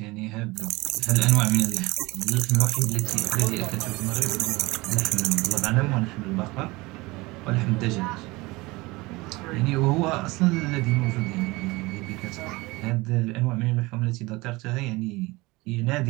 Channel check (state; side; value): quieter; left; 22.5 dB